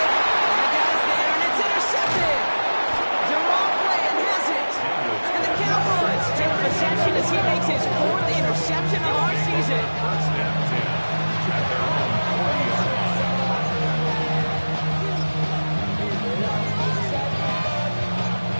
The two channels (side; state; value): both; inverted; correlation -1.00